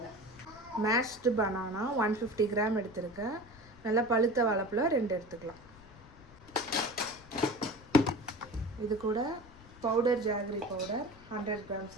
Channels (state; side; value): noise; left; rumble, 22 dB below the sound